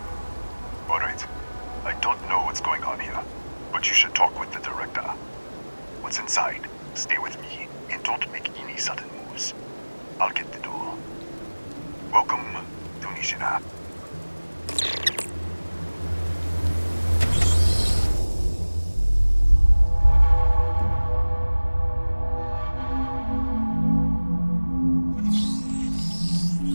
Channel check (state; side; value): inverted; both; correlation -1.00